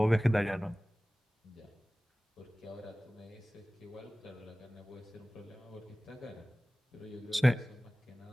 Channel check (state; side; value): normal; both; correlation 0.98